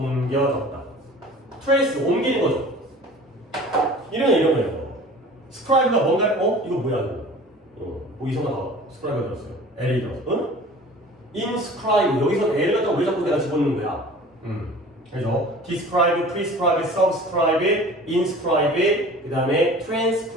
trace 옮기는 거죠. 이런 거예요. 스크라이브가 뭔가 이거 뭐야 이거? 이상하다. 스크라이브가 들었어요. L이 들었어. inscribe 여기서 L을 갖다가 왜 자꾸 내가 집어넣는 거야? 그래서 describe, prescribe, subscribe, inscribe, 그 다음에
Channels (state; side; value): normal; both; correlation 0.43